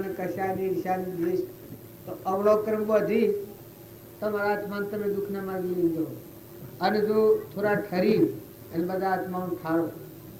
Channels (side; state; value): both; identical; correlation 1.00